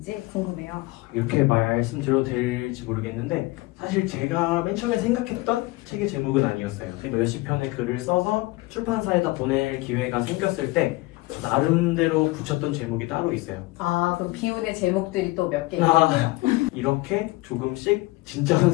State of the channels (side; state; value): right; quieter; 21.3 dB